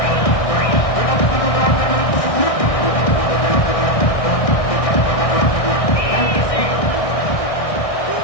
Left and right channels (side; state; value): right; late; 1.6 ms